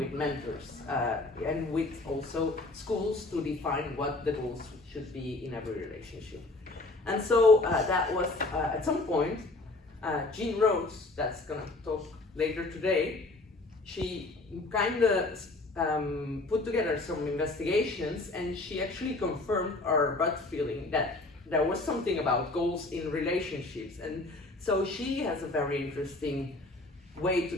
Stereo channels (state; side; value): quieter; right; 3.0 dB